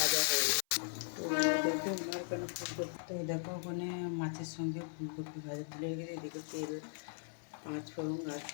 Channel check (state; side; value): silent; right; 52 dB below the other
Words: হয়ে গেছে। তো দেখো আমার ওখানে ফুলকপি, তো দেখো ওখানে মাছের সঙ্গে ফুলকপি ভাজা তুলে গেছে। এদিকে তেল, পাঁচ ফোড়ন আর